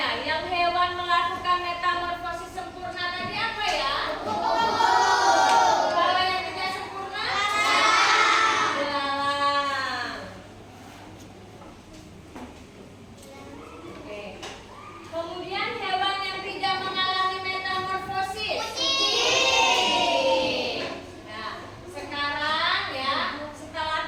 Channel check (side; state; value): both; identical; correlation 1.00